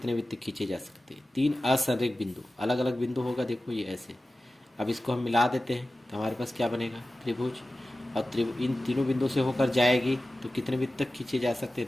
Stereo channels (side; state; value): both; normal; correlation 0.95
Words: वृत्त खींचे जा सकते हैं। 3 असंरेख बिंदु, अलग अलग बिंदु होगा, देखो ये ऐसे। अब इसको हम मिला देते हैं तो हमारे पास क्या बनेगा, त्रिभुज। और इन तीनों बिंदु से होकर जाएगी तो कितने वृत्त तक खींचे जा सकते